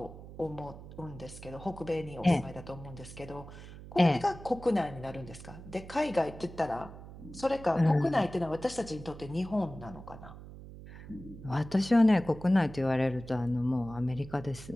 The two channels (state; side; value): noise; right; hum, 15 dB below the sound